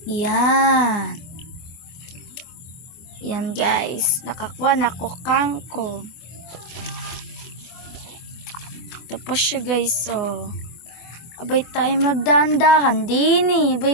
Yan. Yan guys. Nakakuha na ko kangkong. Ito pa siya guys. Oh. Abay tayo magdahan-dahan din eh.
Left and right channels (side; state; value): right; late; 23 ms